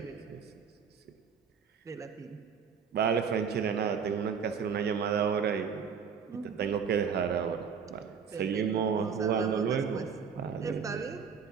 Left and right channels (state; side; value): quieter; left; 6.6 dB